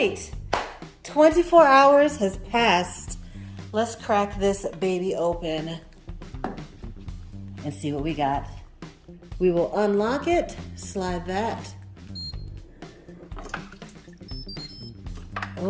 24 hours has passed. Let's crack this baby open and see what we got. We will unlock it, slide that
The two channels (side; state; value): both; identical; correlation 1.00